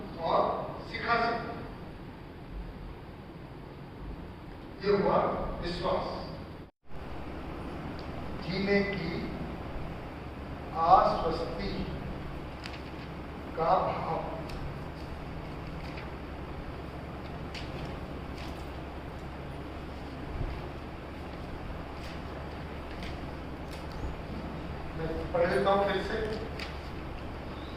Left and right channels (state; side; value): identical; both; correlation 1.00